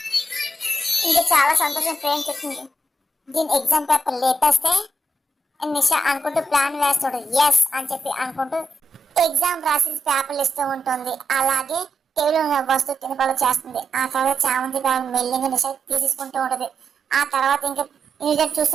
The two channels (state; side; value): normal; both; correlation 0.84